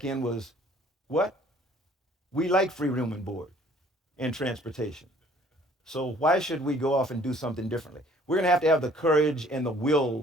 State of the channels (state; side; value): normal; both; correlation 0.57